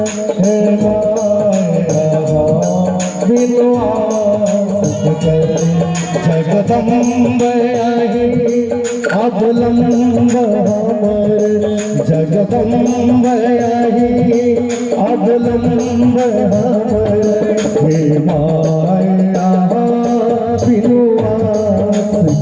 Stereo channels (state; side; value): identical; both; correlation 1.00